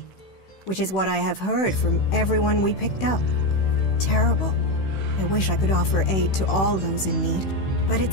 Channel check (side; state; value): right; late; 16 ms